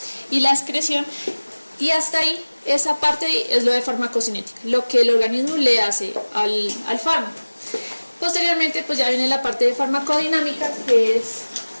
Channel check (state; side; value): inverted; both; correlation -1.00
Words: y la excreción, y hasta ahí, esa parte es lo de farmacocinética, lo que el organismo le hace al fármaco. Posteriormente, pues ya viene la parte de farmacodinámica, que es